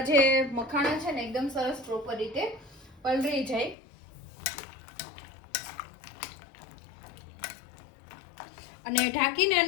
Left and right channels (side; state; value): right; drops out; at 3.8 s